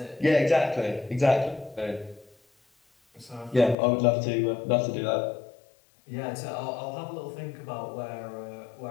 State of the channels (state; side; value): drops out; right; at 3.8 s